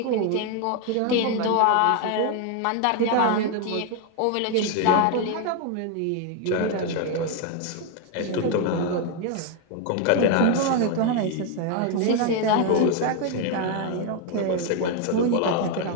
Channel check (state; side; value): different; both; correlation 0.01